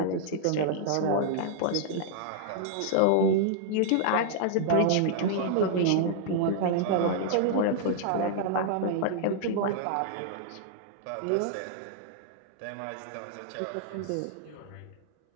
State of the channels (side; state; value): both; different; correlation -0.01